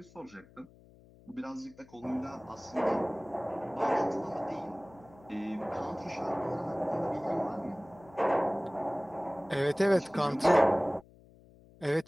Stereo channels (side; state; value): left; noise; hum, 24 dB below the sound